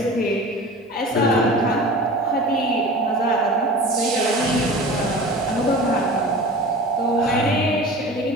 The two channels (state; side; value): normal; both; correlation 0.37